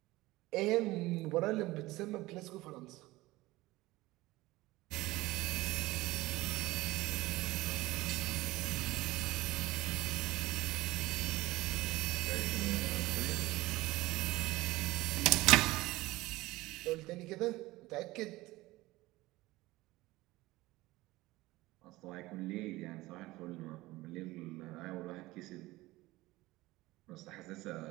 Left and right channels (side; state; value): left; quieter; 19.1 dB